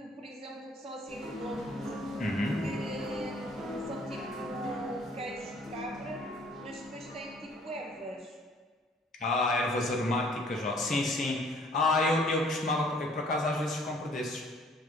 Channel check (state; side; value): normal; both; correlation 0.58